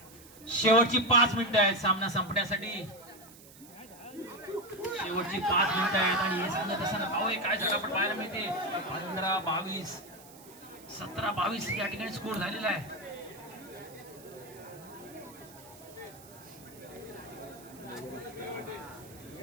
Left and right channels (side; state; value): right; noise; hiss, 21 dB below the sound